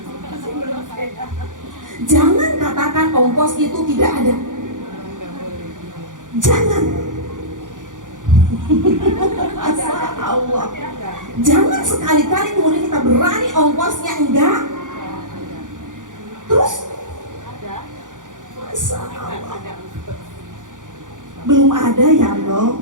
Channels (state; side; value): late; left; 0.87 ms